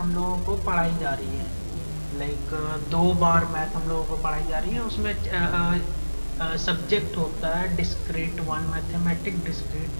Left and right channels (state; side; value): inverted; both; correlation -1.00